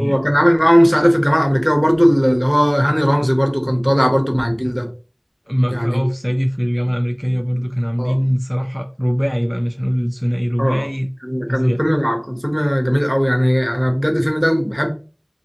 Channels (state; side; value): identical; both; correlation 1.00